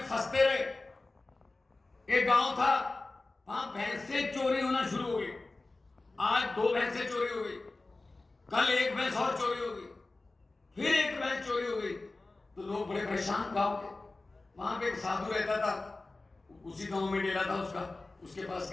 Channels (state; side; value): quieter; right; 3.2 dB